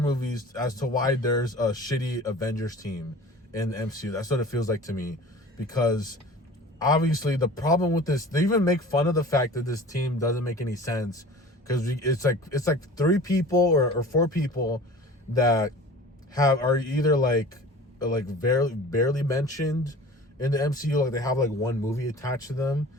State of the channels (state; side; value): normal; both; correlation 0.41